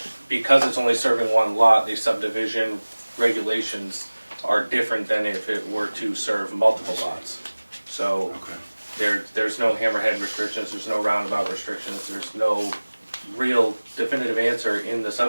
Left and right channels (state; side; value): inverted; both; correlation -1.00